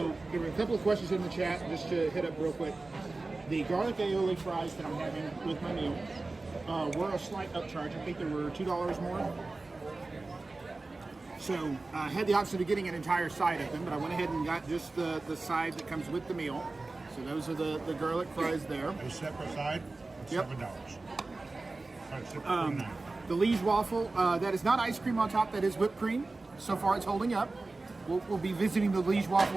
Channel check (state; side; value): quieter; left; 3.4 dB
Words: there were a couple of questions in the chat, just to hit up real quick. The garlic aioli fries that I'm having with my meal were a slight upcharge. I think there were $2 more. So I had the option of getting an entire side of them, but I went ahead and got just the side that comes with the meal. So those are the garlic fries there. A separate side, Yep. $7. The Liege waffle, that is not ice cream on top, that is whipped cream. So far it's holding up. We'll be visiting the Liege